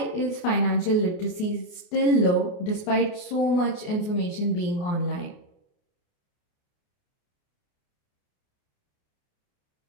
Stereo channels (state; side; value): late; right; 28 ms